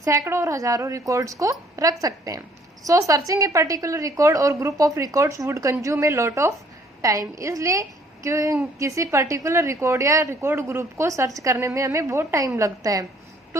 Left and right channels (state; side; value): normal; both; correlation 0.61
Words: सैकड़ों और हजारों रिकॉर्ड्स को रख सकते हैं। सो सर्चिंग ए पर्टिकुलर रिकॉर्ड और group of records would consume a lot of time. इसलिए किसी पर्टिकुलर रिकॉर्ड या रिकॉर्ड ग्रुप को सर्च करने में हमें बहुत टाइम लगता है।